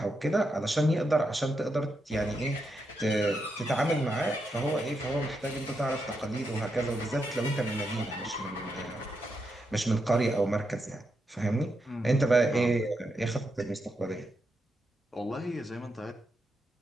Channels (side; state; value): both; normal; correlation 0.83